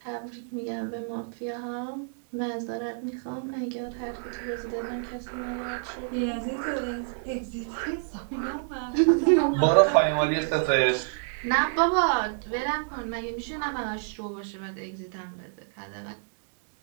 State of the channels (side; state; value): left; silent; 59 dB below the other